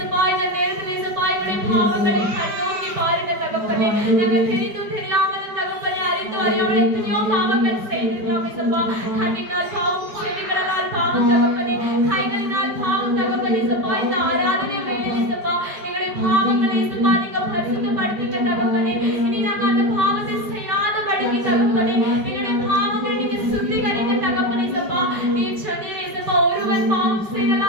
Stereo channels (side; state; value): left; late; 5.0 ms